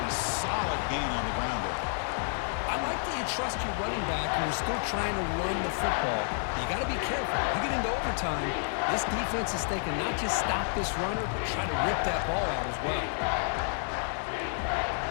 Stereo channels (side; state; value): right; silent; 58 dB below the other